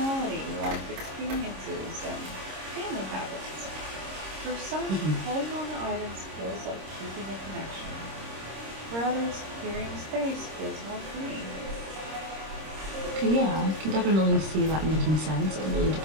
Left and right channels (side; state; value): left; late; 26 ms